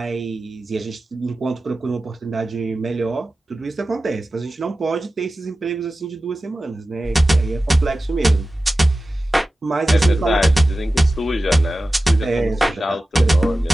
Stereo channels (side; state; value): both; normal; correlation 0.95